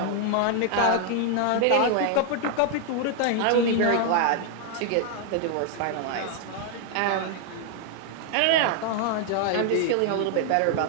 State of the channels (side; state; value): both; different; correlation 0.00